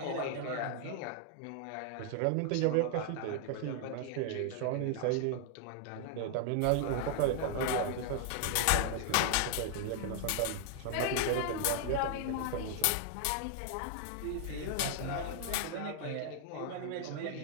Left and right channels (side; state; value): both; different; correlation 0.00